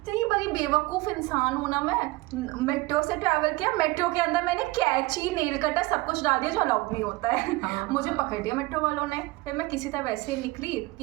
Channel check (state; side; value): quieter; left; 21.4 dB